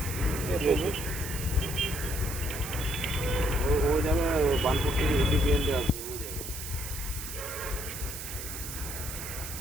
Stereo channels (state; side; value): noise; right; hiss, 8 dB below the sound